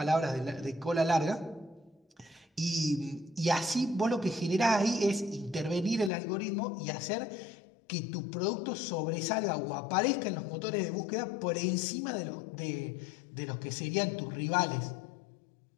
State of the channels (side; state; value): right; drops out; at 6.1 s